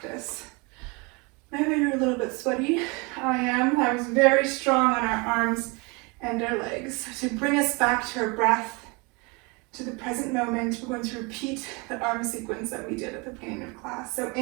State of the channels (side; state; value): left; quieter; 28.8 dB